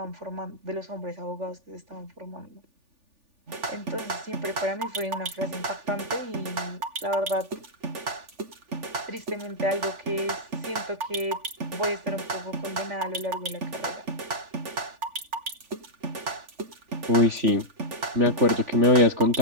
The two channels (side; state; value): left; late; 3.4 ms